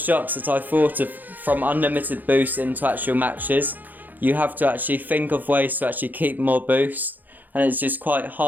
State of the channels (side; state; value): left; late; 0.085 ms